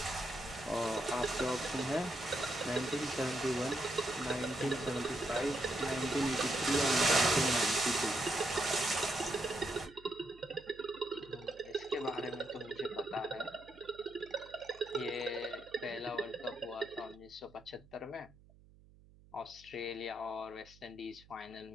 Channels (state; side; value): noise; right; hum, 25 dB below the sound